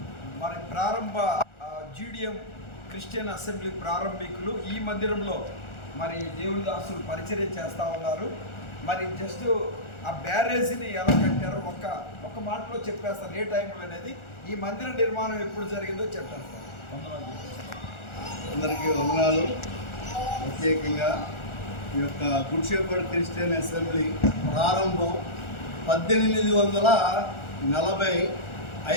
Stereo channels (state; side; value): late; right; 1.4 ms